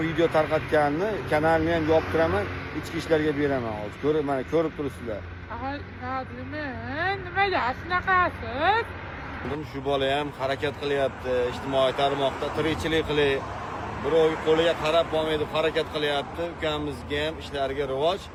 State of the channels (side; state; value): both; identical; correlation 1.00